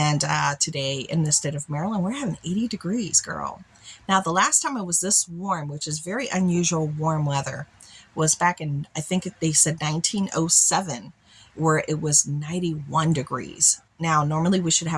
today in the state of Maryland, we're having 80 degrees, girl. Now, the last time it was this warm, which is very unusual warm weather, was back in, I think they said 1907, where it was 91 degrees. Now, normally we should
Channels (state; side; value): identical; both; correlation 1.00